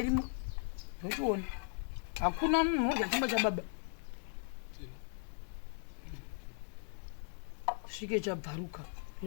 ndochiona hakuna munhu udya chingwa chababa svike chabvaruka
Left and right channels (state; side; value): silent; right; 53 dB below the other